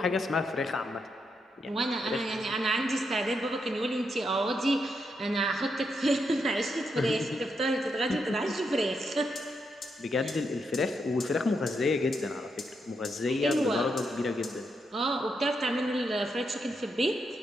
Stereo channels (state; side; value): normal; both; correlation 0.82